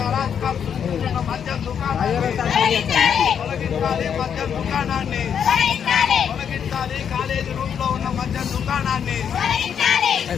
అరాచకాలు సృష్టిస్తున్న మద్యం దుకాణాన్ని తొలగించాలి. మద్యం దుకాణాన్ని తొలగించాలి. కాలేజీ రూమ్ లో ఉన్న మద్యం దుకాణాన్ని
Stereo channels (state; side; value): quieter; right; 7.9 dB